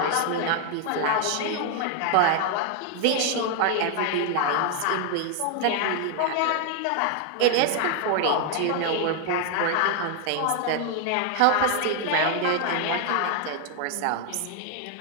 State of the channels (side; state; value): both; different; correlation 0.00